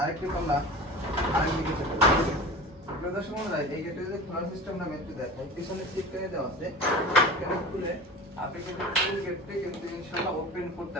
আরেকটি পাল্লা আরেকদিকে চলে যাবে। দর্শক বন্ধুরা, এই গেটে যদি খোলার সিস্টেমটা আমি একটু দেখাই, পিছনে সিটকারে দেওয়া আছে, এখানে খুলে আপনি কিন্তু ফুল গেটটি কিন্তু ইনশাআল্লাহ ওপেন করতে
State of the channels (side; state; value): both; normal; correlation 0.33